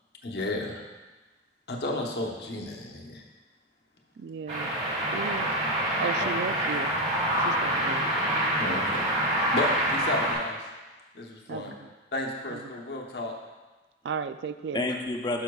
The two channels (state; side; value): normal; both; correlation 0.06